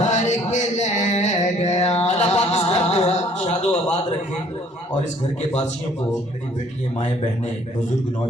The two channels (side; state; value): both; normal; correlation 0.59